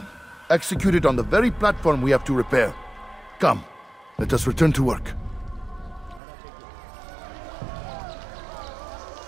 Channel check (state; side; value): drops out; left; at 6.2 s